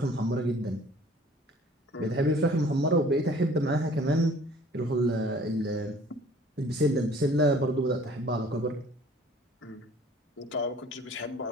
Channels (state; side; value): normal; both; correlation 0.52